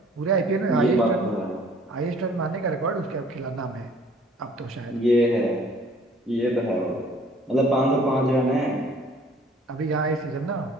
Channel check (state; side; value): normal; both; correlation 0.55